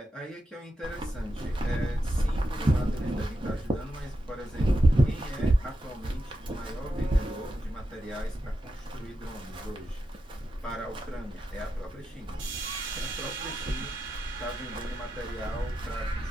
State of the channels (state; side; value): normal; both; correlation 0.88